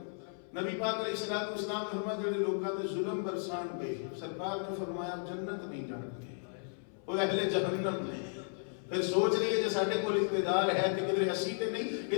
نبی پاک علیہ السلام نے فرمایا جڑے لوکاں تے ظلم برسان گئے سرکار نے فرمایا جنت نہیں جان گے, وہ اہل جہنم نے. پھر سوچ رہی ہے جو ساڈے کول اقتدار ہے تے کدھر اسی تے نہیں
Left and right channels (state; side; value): silent; right; 55 dB below the other